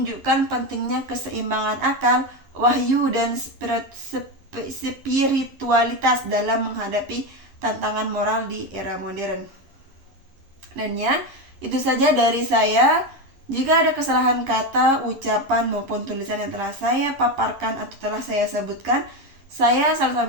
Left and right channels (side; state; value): left; late; 11 ms